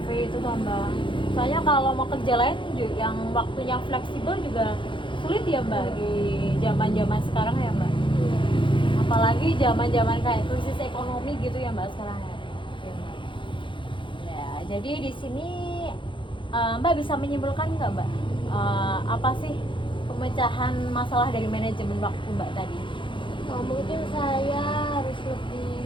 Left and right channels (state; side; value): late; right; 0.24 ms